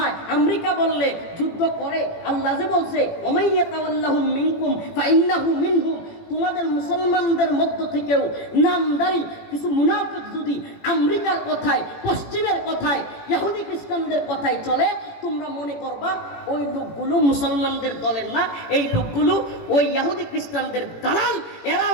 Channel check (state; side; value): late; right; 18 ms